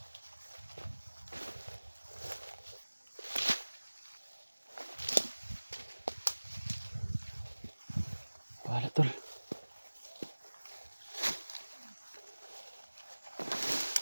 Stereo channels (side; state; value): both; inverted; correlation -1.00